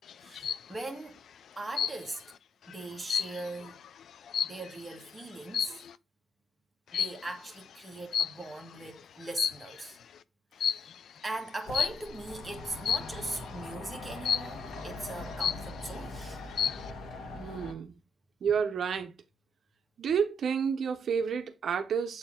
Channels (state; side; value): normal; both; correlation 0.72